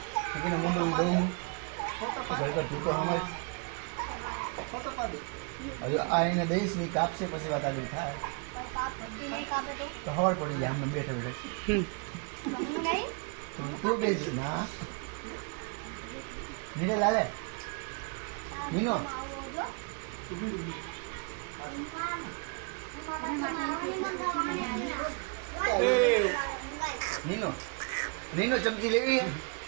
એને મોઢું દઉં ખરેખર તું તો સમજ. હવે આ એને દઈશ ની કાપશે પછી વાત આગળ થાય તો ખબર પડી જાય. આમને બેઠે બેઠે તું બેસ ના નીને લાલે નીનો નીનો નીનો ચમચી લેવી.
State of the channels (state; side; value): quieter; left; 34.2 dB